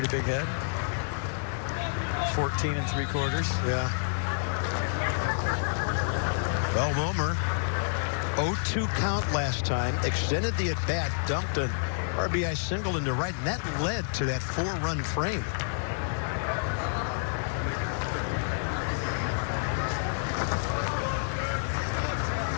big head. 14 3/4. Yeah. Well, Romer, 0-2 count last time, extended the at-bat, dumped an RBI single into right, and that led to that 4-run frame.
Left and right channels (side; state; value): right; silent; 58 dB below the other